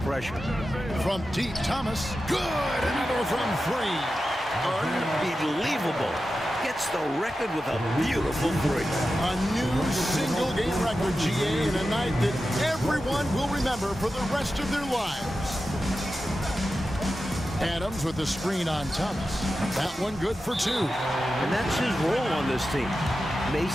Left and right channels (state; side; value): normal; both; correlation 0.92